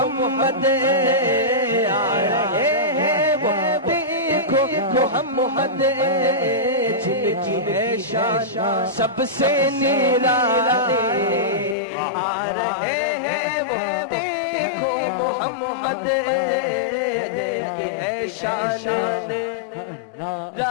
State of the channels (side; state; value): right; drops out; at 11.8 s